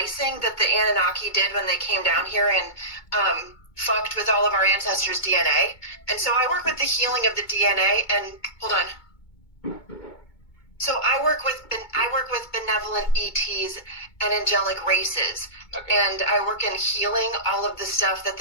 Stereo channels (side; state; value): right; late; 2.2 ms